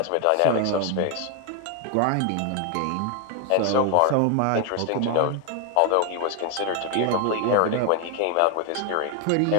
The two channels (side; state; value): both; different; correlation 0.01